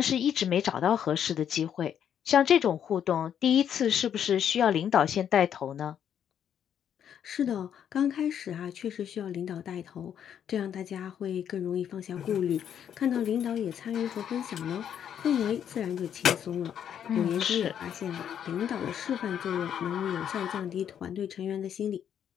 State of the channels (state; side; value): quieter; right; 9.1 dB